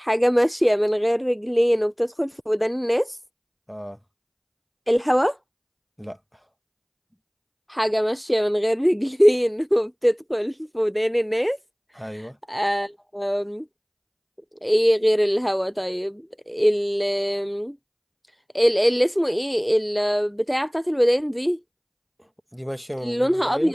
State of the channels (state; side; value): identical; both; correlation 1.00